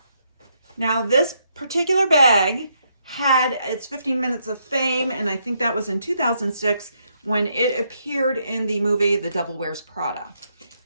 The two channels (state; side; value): inverted; both; correlation -0.76